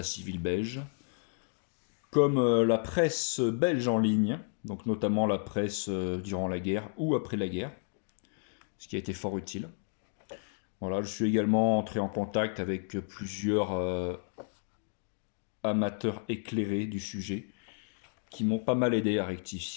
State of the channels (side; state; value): right; silent; 56 dB below the other